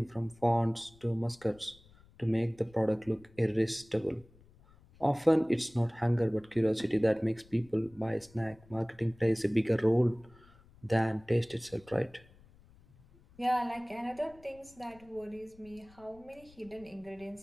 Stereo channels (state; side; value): noise; left; rumble, 26 dB below the sound